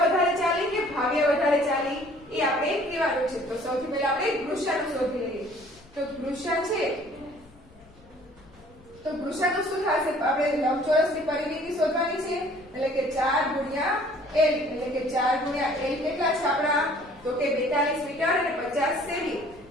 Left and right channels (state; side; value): noise; left; rumble, 26 dB below the sound